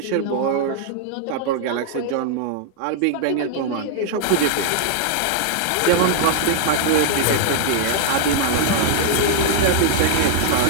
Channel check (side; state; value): both; different; correlation -0.01